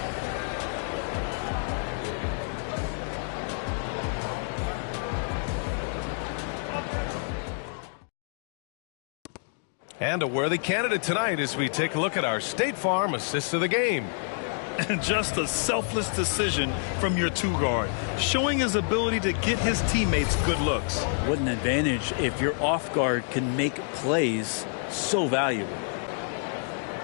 And a worthy candidate tonight as we take a look at our State Farm assist of the game. And just a selfless decision from your 2-guard, showing his ability to get his teammates good looks. What an advantage if your off guard can make plays so valuable.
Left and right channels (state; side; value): silent; right; 59 dB below the other